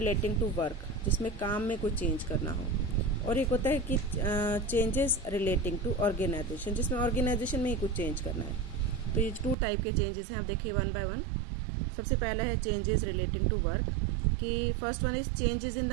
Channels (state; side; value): drops out; left; at 9.6 s